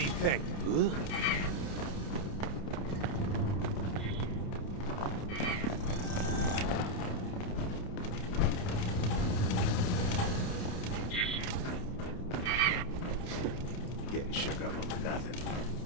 you think? Getting shook up over nothing.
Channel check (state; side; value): late; right; 29 ms